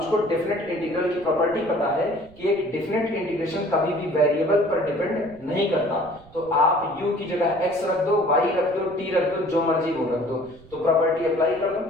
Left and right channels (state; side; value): noise; right; rumble, 23 dB below the sound